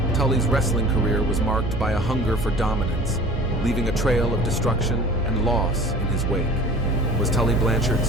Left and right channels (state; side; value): normal; both; correlation 0.45